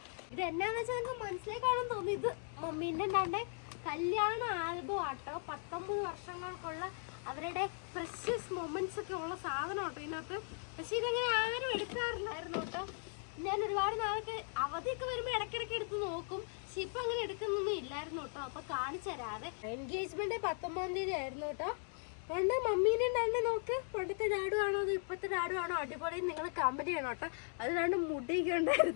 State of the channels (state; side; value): silent; right; 52 dB below the other